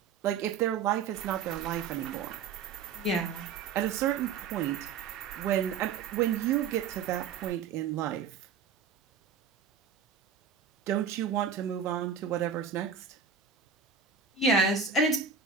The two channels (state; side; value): quieter; left; 6.3 dB